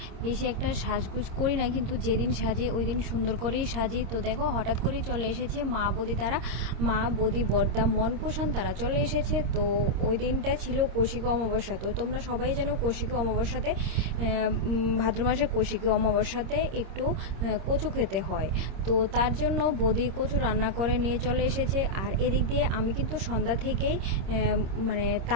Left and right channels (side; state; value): left; late; 26 ms